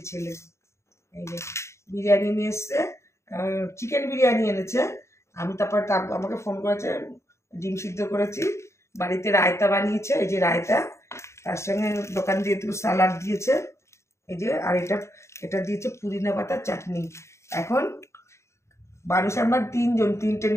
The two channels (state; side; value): late; right; 0.14 ms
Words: ছেলে, এই যে বিরিয়ানি নিয়ে এসছে, চিকেন বিরিয়ানি এনেছে। আমি তারপর আমাকে ফোন করেছে, ডিম সিদ্ধ করেছি, বাড়িতে রায়তা বানিয়েছে, এই যে রায়তা, তার সঙ্গে দোকান দিয়ে একটু সালাড দিয়েছে, এই যে, আর এটা দিয়েছে পুদিনা পাতার চাটনি। এখন মানুষ আমরা তিনজন, তিনটে